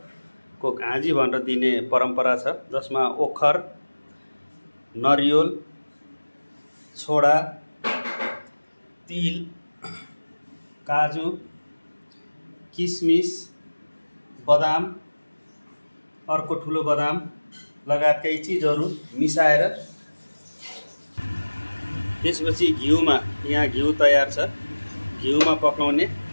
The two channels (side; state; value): both; inverted; correlation -1.00